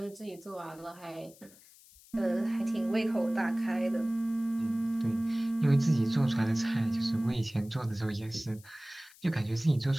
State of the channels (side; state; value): left; noise; hiss, 24 dB below the sound